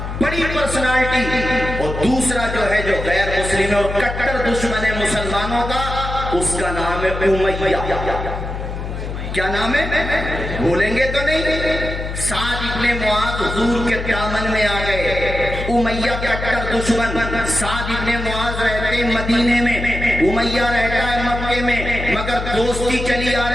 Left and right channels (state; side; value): noise; left; hum, 6 dB below the sound